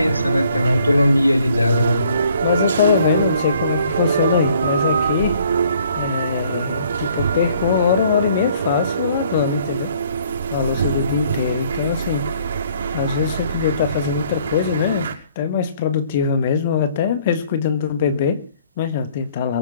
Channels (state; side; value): inverted; both; correlation -0.61